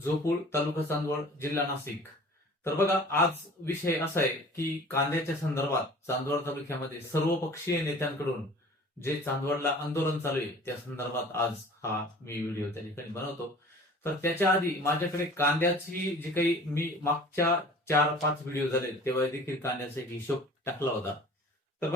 तालुका चांदवड, जिल्हा नाशिक. तर बघा, आज विषय असा आहे की कांद्याच्या संदर्भात चांदवड तालुक्यामध्ये सर्वपक्षीय नेत्यांकडून जे चांदवडला आंदोलन चालू आहे त्या संदर्भात आज हा मी व्हिडिओ त्या ठिकाणी बनवतो. तर त्याच्या आधी माझ्याकडे कांद्याची जी काही मी मागच्या 4-5 व्हिडिओ झाले तेव्हा देखील कांद्याचा एक हिशोब टाकला होता. तर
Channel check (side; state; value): both; normal; correlation 0.45